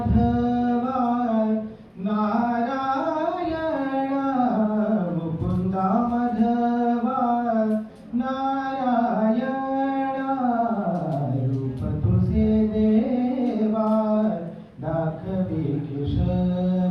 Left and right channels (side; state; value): both; identical; correlation 1.00